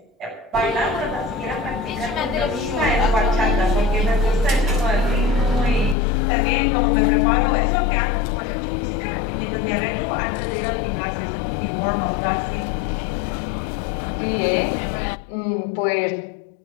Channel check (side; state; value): right; drops out; at 6.0 s